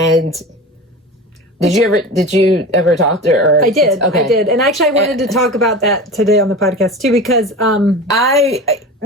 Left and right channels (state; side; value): normal; both; correlation 0.31